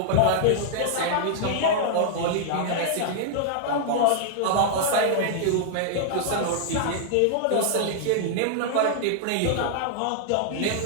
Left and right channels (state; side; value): different; both; correlation -0.01